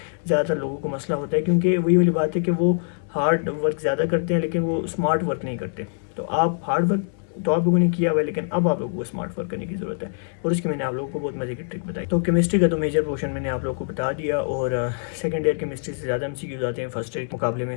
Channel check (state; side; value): silent; right; 63 dB below the other